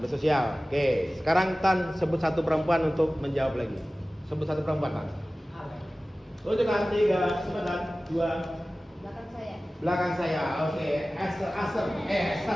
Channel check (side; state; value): both; normal; correlation 0.97